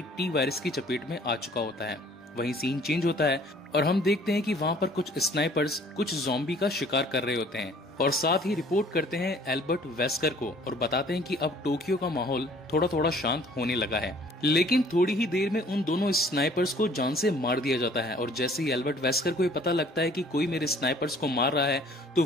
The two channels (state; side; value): normal; both; correlation 0.55